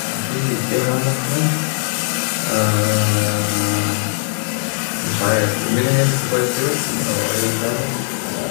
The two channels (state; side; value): silent; right; digital silence